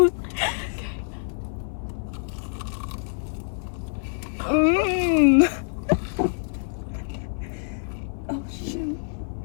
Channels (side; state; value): right; silent; 58 dB below the other